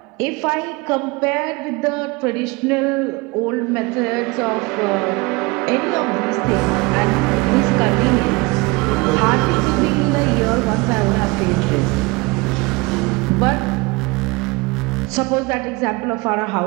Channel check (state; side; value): quieter; left; 25.3 dB